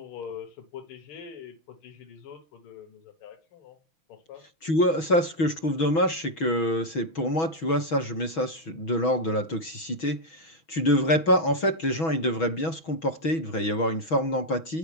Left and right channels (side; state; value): right; late; 6.2 ms